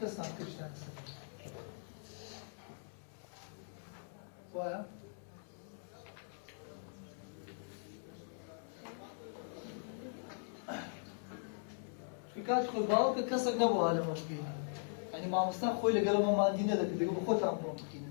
صنع كل شيء وايا كانت خو باو كسر نبو على مكينة يعني ما مستان خوي لقلب ما عندنا ذاك بيقول خو تعملوا مكينة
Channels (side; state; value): right; silent; digital silence